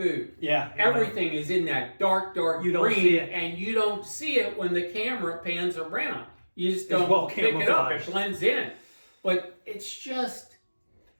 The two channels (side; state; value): both; inverted; correlation -1.00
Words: yeah, Everything is in that dark You green, don't see it. and you don't see it when the camera pans around. You just It's don't well pick it up. It camouflaged. blends in, but it's just